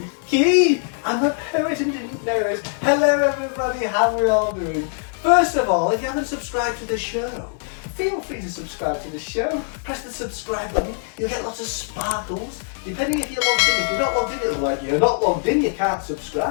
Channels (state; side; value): silent; right; 62 dB below the other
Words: I'm a poet and didn't know it. Hello everybody, how are we all doing? First of all, if you haven't subscribed to the show, feel free to subscribe to the show. Press the subscribe button, you'll get lots of sparkles, depending if you're logged in. If you're not logged in, it'll be like, you're not logged in, you can't